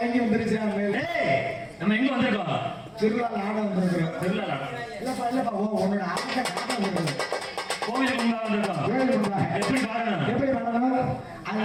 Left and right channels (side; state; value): both; identical; correlation 1.00